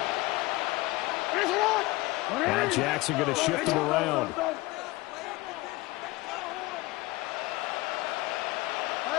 Now Jackson going to shift him around.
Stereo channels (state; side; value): quieter; right; 21.0 dB